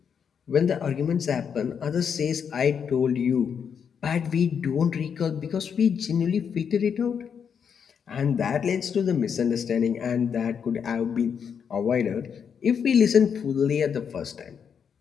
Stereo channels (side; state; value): right; quieter; 7.2 dB